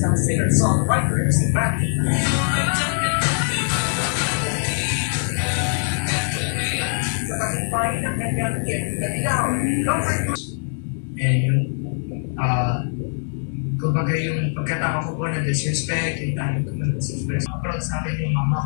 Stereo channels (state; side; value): silent; right; digital silence